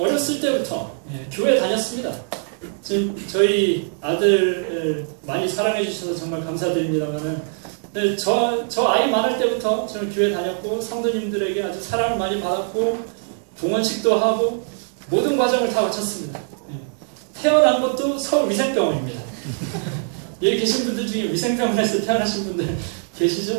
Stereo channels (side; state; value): left; silent; 64 dB below the other